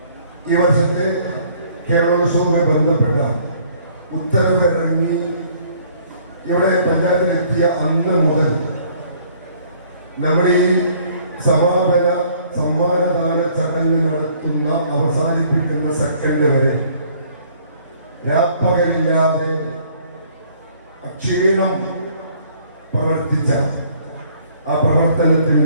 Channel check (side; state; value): both; inverted; correlation -0.59